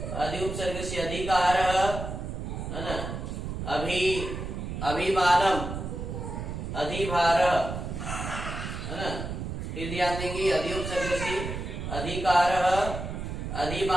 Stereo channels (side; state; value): right; noise; rumble, 5 dB below the sound